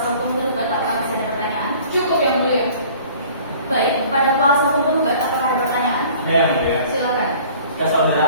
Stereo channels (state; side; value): inverted; both; correlation -0.49